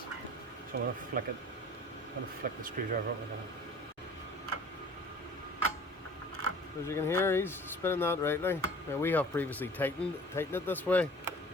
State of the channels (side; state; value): both; normal; correlation 0.46